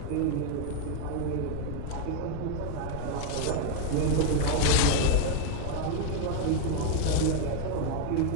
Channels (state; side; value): different; both; correlation 0.00